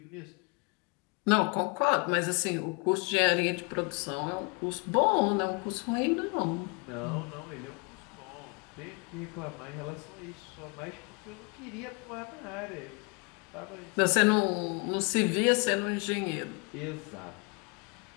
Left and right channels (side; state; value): right; quieter; 32.2 dB